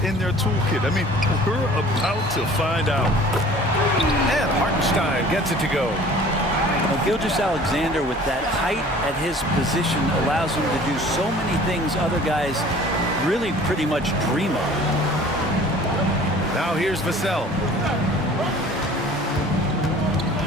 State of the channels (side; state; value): both; normal; correlation 0.48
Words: in their toolkit? I mean, we're about to find out. And Hartenstein gets it to go. Well, Gilgeous-Alexander, with that height at his position, allows him to do so many things other guys really pretty much dream of. Now here's Vassell.